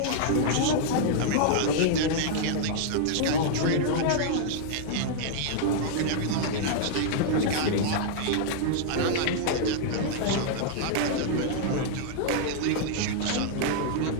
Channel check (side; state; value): both; different; correlation -0.01